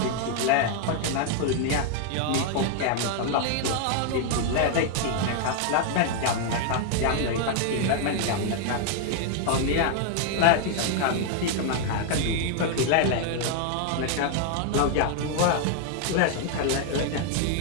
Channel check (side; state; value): both; different; correlation 0.00